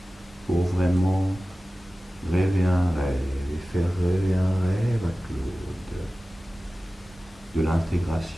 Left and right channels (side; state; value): both; normal; correlation 0.96